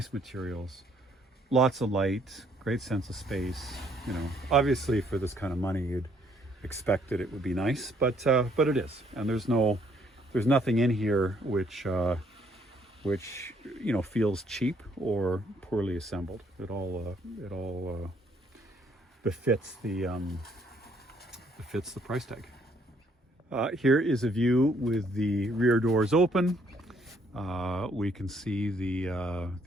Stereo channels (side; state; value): both; normal; correlation 0.67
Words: materials, lots of light, great sense of space. You know, obviously for this kind of money, you'd expect that it would be nice, but it is, and there's nothing in here which feels cheap or poorly assembled. It all befits the price tag. Here is a view with the rear doors open. We can see the